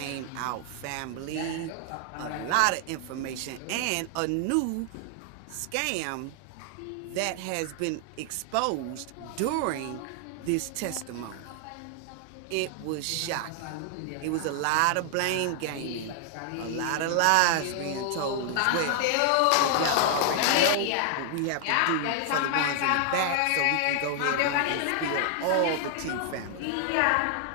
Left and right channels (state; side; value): different; both; correlation 0.00